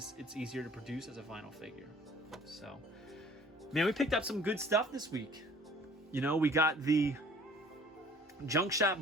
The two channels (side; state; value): both; normal; correlation 0.52